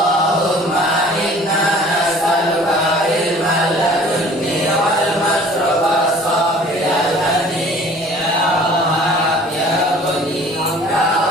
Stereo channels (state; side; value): normal; both; correlation 0.49